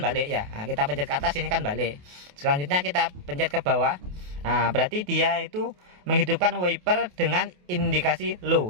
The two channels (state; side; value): late; left; 28 ms